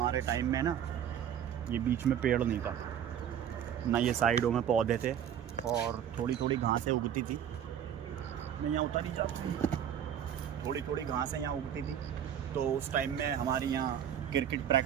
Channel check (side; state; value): left; quieter; 9.4 dB